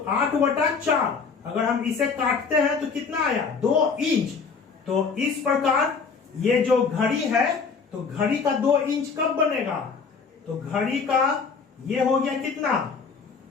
8/4। अगर हम इसे काटते हैं तो कितना आया? 2 इंच। तो इस प्रकार ये जो घड़ी है, तो घड़ी का 2 इंच कब बनेगा? तो घड़ी का ये हो गया कितना?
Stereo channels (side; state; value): right; quieter; 5.3 dB